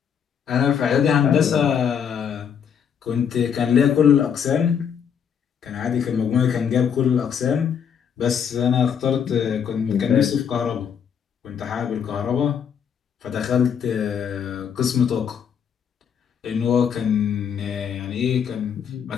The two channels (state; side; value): quieter; right; 7.7 dB